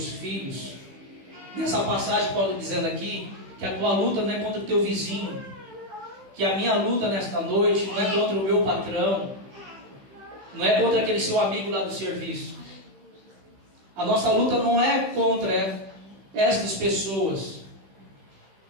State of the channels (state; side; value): late; left; 15 ms